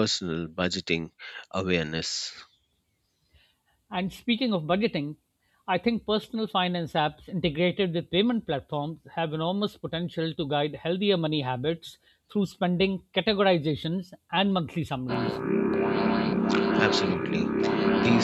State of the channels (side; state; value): both; identical; correlation 1.00